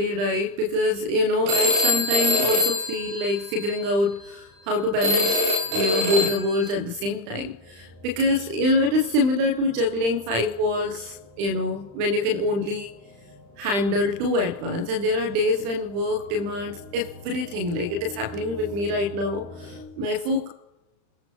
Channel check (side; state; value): left; late; 35 ms